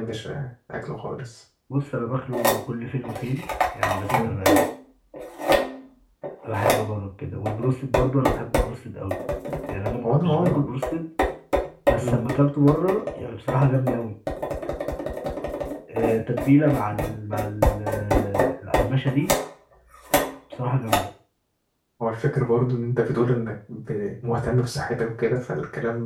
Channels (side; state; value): both; identical; correlation 1.00